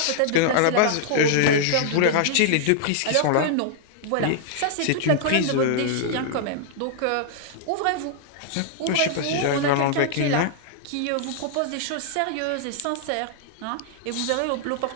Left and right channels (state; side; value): different; both; correlation -0.01